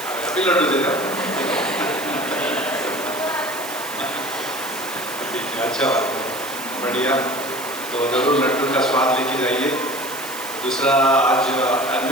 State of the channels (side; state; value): right; noise; hiss, 11 dB below the sound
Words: अभी लड्डू देगा। ठीक है, अच्छा बात है, बढ़िया। तो जरूर लड्डू का स्वाद लेके जाइए। दूसरा, आज